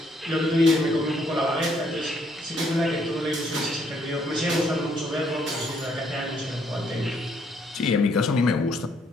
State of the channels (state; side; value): normal; both; correlation 0.70